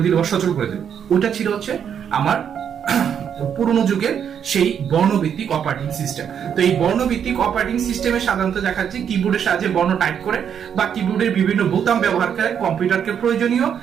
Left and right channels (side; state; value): left; quieter; 8.2 dB